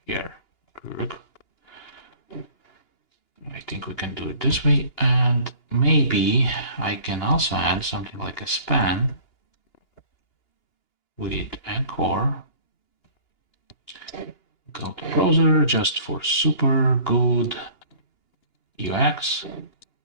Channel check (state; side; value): late; right; 2.9 ms